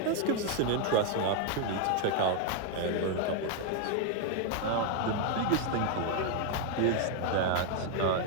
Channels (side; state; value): both; different; correlation 0.01